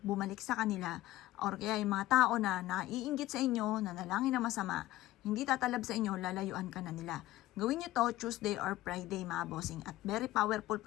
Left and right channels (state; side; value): quieter; right; 16.2 dB